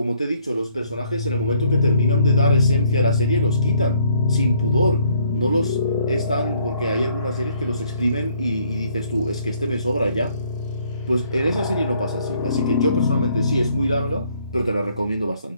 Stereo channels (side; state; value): both; inverted; correlation -0.65